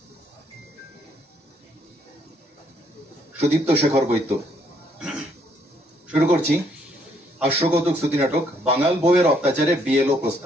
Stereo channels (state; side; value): normal; both; correlation 0.69